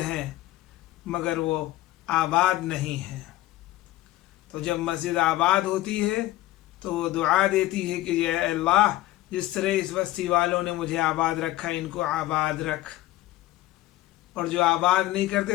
ہیں مگر وہ آباد نہیں ہیں، تو جب مسجد آباد ہوتی ہے تو وہ دعا دیتی ہے کہ اے اللہ، جس طرح اس بستی والوں نے مجھے آباد رکھا ان کو آباد رکھ، اور جو آباد نہیں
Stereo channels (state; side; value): quieter; right; 16.2 dB